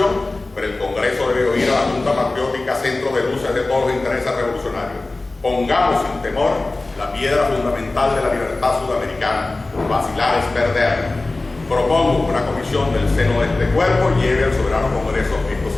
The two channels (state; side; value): quieter; right; 3.1 dB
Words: pero el Congreso debe oír a la Junta Patriótica, centro de luces de todos los intereses revolucionarios. Pongamos sin temor la piedra fundamental de la libertad sudamericana. Vacilar es perder. Propongo que una comisión del seno de este cuerpo lleve al soberano Congreso estos